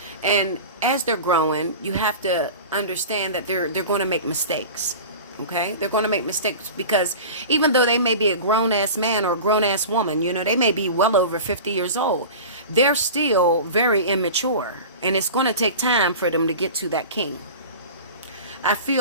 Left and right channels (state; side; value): inverted; both; correlation -0.34